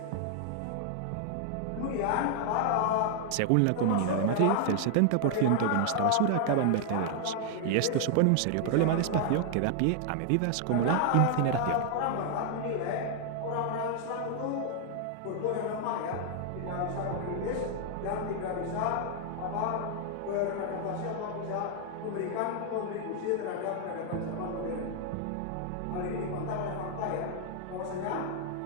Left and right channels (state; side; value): different; both; correlation 0.00